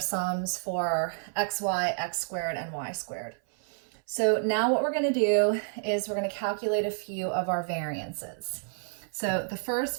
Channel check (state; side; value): silent; left; 58 dB below the other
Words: sums for xy, x squared, and y squared. So now what we're going to do is we're going to calculate a few of our variances. So the first